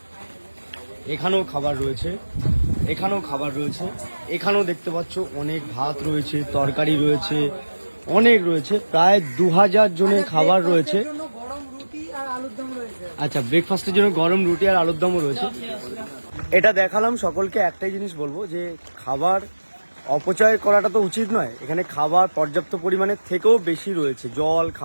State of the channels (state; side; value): inverted; both; correlation -1.00